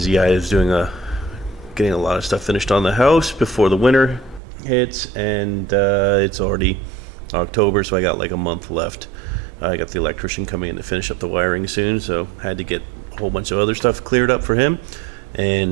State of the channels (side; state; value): left; drops out; at 4.4 s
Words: I was getting a lot of stuff finished on the house before the winter hits, and it's already October, so I got like a month left. I got the electrician coming in to finish up the wiring soon, so had to get a whole bunch of other stuff cleared up for him,